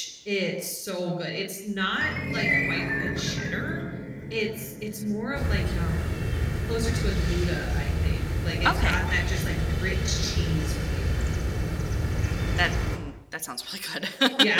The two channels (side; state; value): both; identical; correlation 1.00